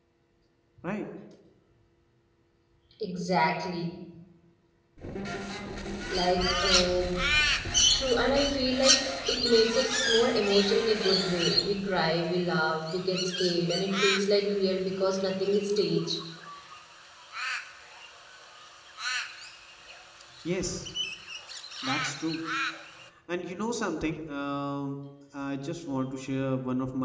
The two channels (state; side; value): identical; both; correlation 1.00